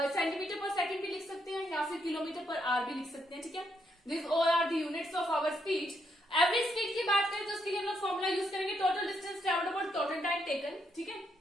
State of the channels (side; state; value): both; normal; correlation 0.77